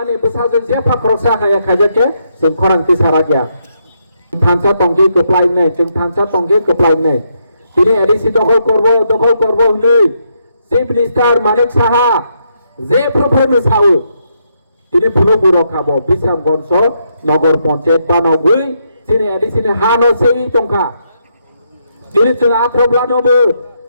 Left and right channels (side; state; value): both; inverted; correlation -0.78